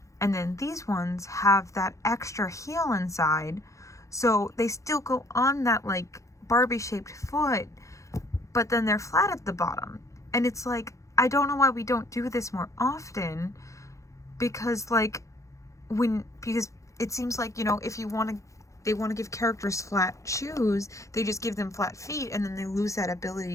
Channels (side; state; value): right; late; 0.15 ms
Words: and then these ones have that extra heel inside, so they still go on that Barbie shaped foot, but then they're flat at the bottom. And it's I don't know why we don't do this more often, because like because it seems like, you know, if you want to, they want to give characters flat shoes, they just give them flat feet, and then they lose that